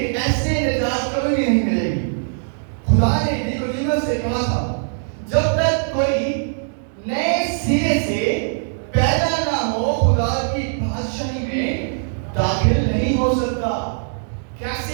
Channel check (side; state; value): left; silent; digital silence